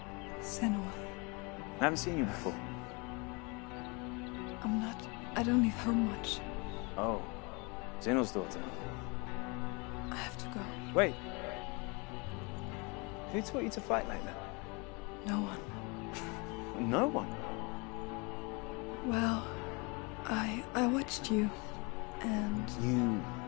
Senua. I haven't seen you before. I don't leave home much. Oh, Zeno's daughter. I have to go. Wait. Who taught you to fight like that? No one. No one? Well, I watched you, and You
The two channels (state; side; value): quieter; right; 29.4 dB